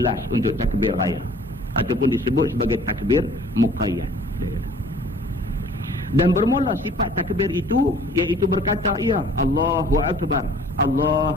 last untuk takbir raya. Ataupun disebut sebagai takbir muqayyad. Dan bermula sifat takbir itu, iaitu berkata, ya Allahu Akbar,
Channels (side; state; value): both; normal; correlation 0.52